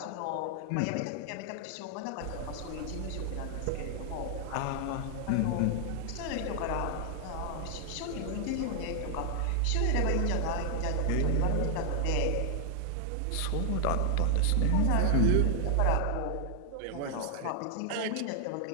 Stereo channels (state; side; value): different; both; correlation 0.00